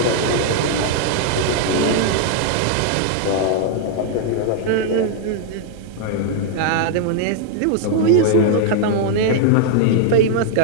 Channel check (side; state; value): both; different; correlation 0.00